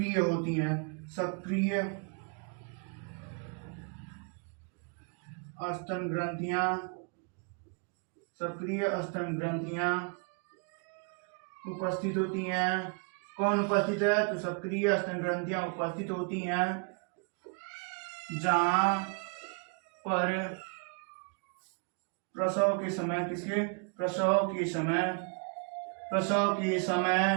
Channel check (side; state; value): left; quieter; 37.1 dB